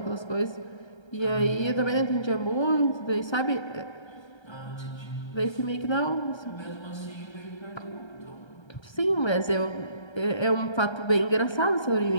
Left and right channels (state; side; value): late; right; 1.3 ms